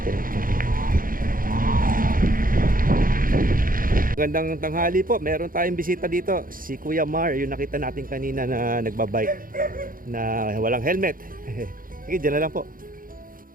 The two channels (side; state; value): left; late; 0.41 ms